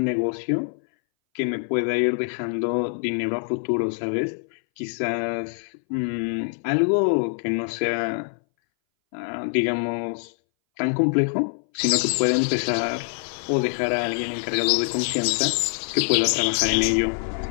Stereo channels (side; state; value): right; silent; 60 dB below the other